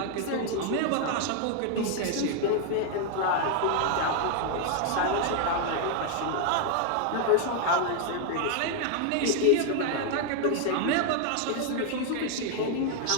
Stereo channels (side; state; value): both; different; correlation 0.00